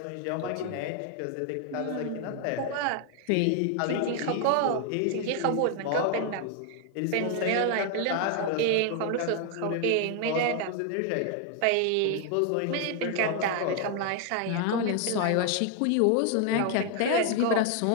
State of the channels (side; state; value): both; different; correlation 0.00